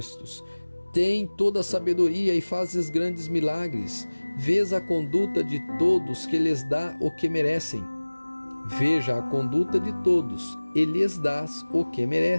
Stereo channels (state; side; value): inverted; both; correlation -1.00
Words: Tem toda a sabedoria e fazes grandes milagres. Vês a conduta de todos que lhes dá o que merecem. Veja a conduta de todos, e lhes dás o que